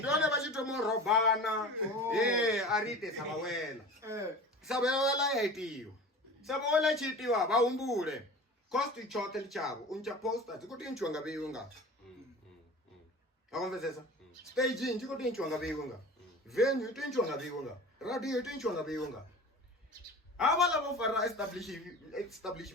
vachitomo robana arite sabawela yaitiyo sabawela chitiwa vahumbule cost chote lichavo uncha poster tikuti nchwanga veyunga akonvezesa staging tikuti nchwanga veyunga venue tinchwanga veyunga radio tinchwanga veyunga avala vo fara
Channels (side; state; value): both; normal; correlation 0.37